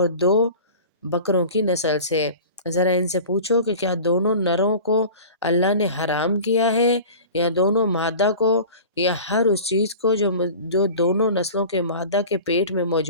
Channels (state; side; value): inverted; both; correlation -0.38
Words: 2 بکروں کی نسل سے۔ ذرا ان سے پوچھو کہ کیا دونوں نروں کو اللہ نے حرام کیا ہے یا دونوں مادہ کو، یا ہر اس چیز کو جو دونوں نسلوں کے مادہ کے پیٹ میں